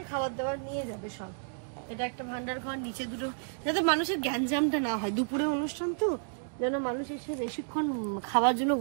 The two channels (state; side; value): silent; left; digital silence